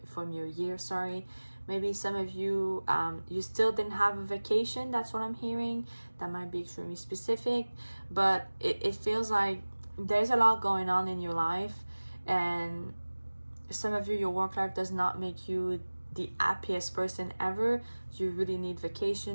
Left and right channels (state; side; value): inverted; both; correlation -1.00